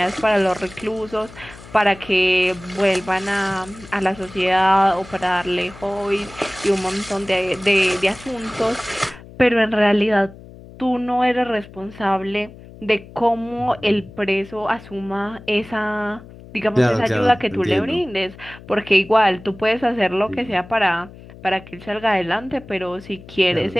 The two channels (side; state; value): left; noise; hum, 19 dB below the sound